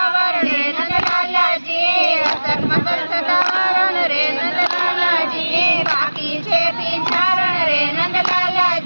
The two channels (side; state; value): both; inverted; correlation -1.00